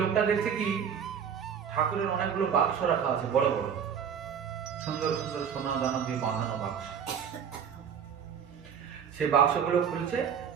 লোকটা দেখছে কি, ঠাকুরের অনেকগুলো বাক্স রাখা আছে, বড় বড় সুন্দর সুন্দর সোনা দানা দিয়ে বাঁধানো বাক্স। সেই বাক্সগুলো খুলছে,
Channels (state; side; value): quieter; left; 7.7 dB